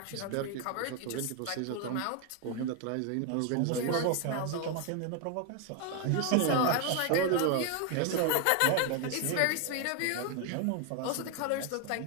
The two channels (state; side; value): different; both; correlation 0.01